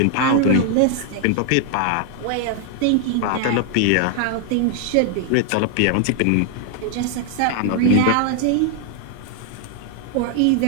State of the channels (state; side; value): different; both; correlation 0.00